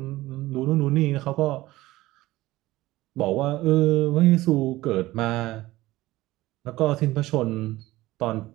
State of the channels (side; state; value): left; quieter; 17.6 dB